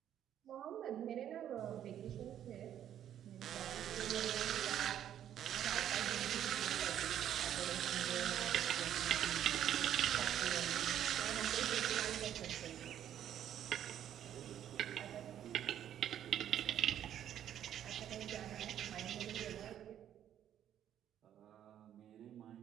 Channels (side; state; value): left; quieter; 10.5 dB